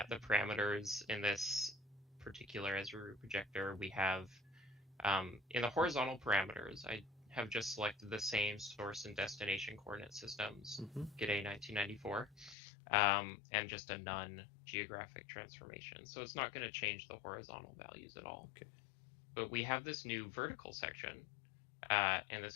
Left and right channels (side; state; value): right; drops out; at 12.6 s